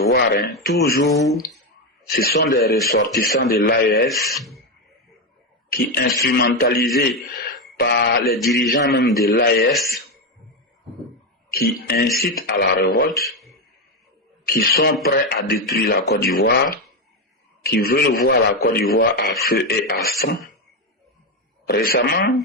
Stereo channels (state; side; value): normal; both; correlation 0.09